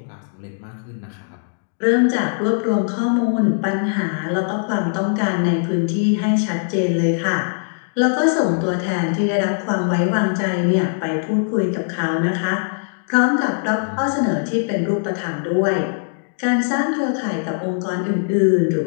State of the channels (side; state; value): right; silent; digital silence